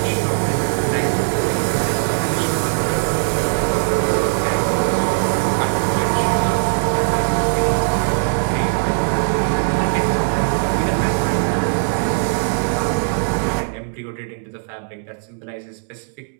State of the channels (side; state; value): left; silent; digital silence